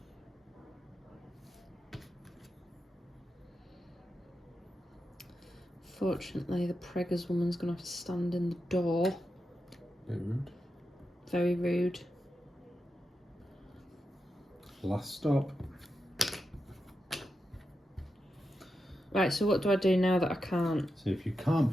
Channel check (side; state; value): both; normal; correlation 0.88